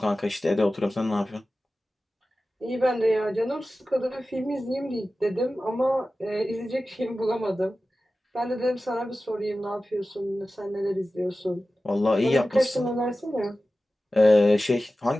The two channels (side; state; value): both; normal; correlation 0.95